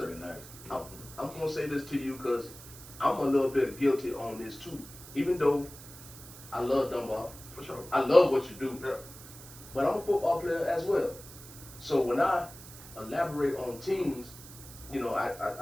nice. I'm going to say this to you because I'm a little bit guilty on this too. Even though I love Dunbar. For sure. I love what you do. Yeah. But I'm a football player as well. So when I elaborate on teams, you know,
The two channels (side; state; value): right; noise; hiss, 16 dB below the sound